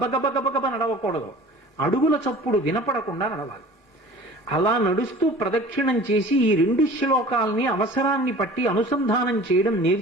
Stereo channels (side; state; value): both; normal; correlation 0.43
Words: గబగబ నడవకూడదు, అడుగుల చప్పుడు వినపడకుండా నడవాలి. అలా నడుస్తూ ప్రదక్షిణం చేసి ఈ 2 శ్లోకాల్ని అవసరాన్ని పట్టి అనుసంధానం చేయడం